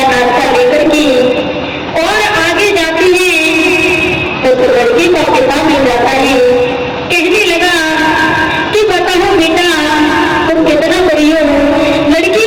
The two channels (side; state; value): both; identical; correlation 1.00